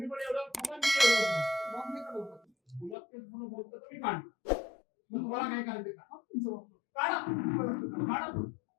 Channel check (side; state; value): right; drops out; at 3.0 s